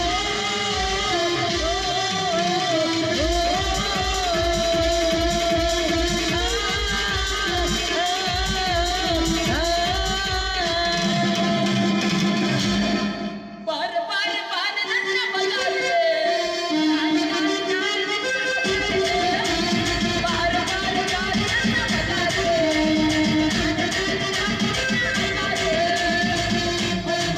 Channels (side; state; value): both; identical; correlation 1.00